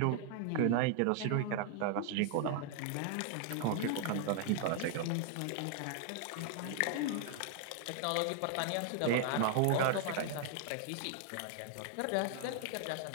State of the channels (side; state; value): both; different; correlation 0.00